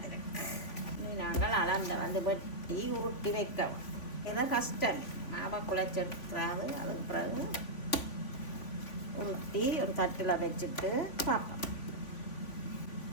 நாங்கள் அளந்த வெட்டி உருட்டி வைக்கவும். இதை கஷ்டம். மாவை குழச்சி எடுக்கிறாது. அதுக்கு பிறகு உருட்டி ஒரு தட்டில் வச்சுட்டு பார்ப்போம்.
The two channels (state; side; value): late; right; 3.5 ms